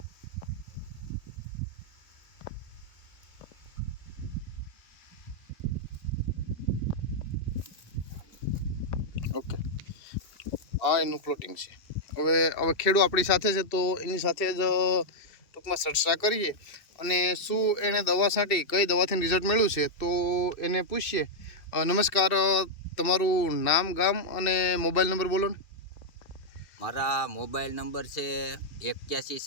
ઓકે, આ એનું પ્લોટિંગ છે. હવે ખેડૂત આપણી સાથે છે, તો એની સાથે જ ટૂંકમાં ચર્ચા કરીએ અને શું એણે દવા છાંટી, કઈ દવાથી રિઝલ્ટ મળ્યું છે, તો એને પૂછીએ. નમસ્કાર, તમારું નામ, ગામ અને મોબાઈલ નંબર બોલો ને. મારા મોબાઈલ નંબર છે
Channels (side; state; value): right; late; 2.7 ms